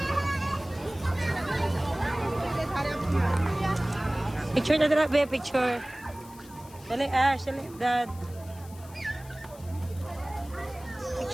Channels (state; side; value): noise; left; hiss, 22 dB below the sound